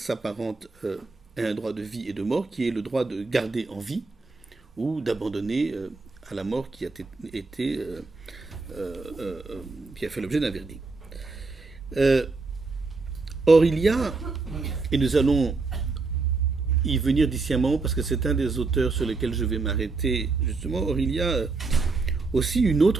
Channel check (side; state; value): left; quieter; 3.9 dB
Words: s'apparente à un droit de vie et de mort, qui est le droit de garder en vie ou d'abandonner à la mort qui a fait l'objet d'un verdict. Or, il y a, et nous allons y venir d'ici un moment, parce que c'est un des auteurs sur lesquels je vais m'arrêter, justement, or, il y a aussi une